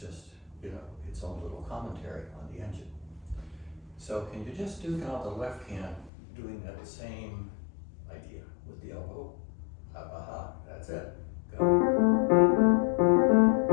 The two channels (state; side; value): drops out; right; at 6.1 s